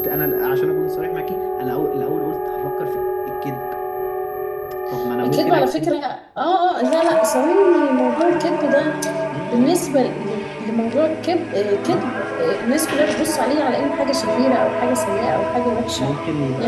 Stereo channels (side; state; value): both; identical; correlation 1.00